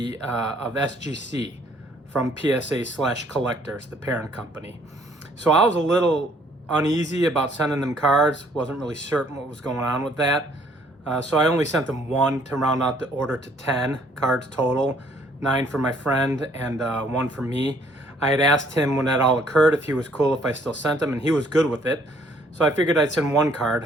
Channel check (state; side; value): normal; both; correlation 0.63